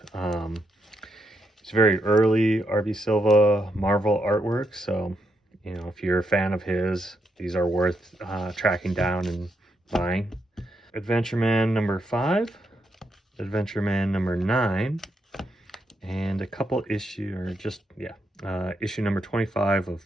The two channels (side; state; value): both; normal; correlation 0.80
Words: It's very early R.B. Silva Marvel artwork, so you know, if you're a fan of his, these are worth tracking down and buying. Adventure Man number 5, Adventure Man number 9, and a couple issue, or just, issue number 25 of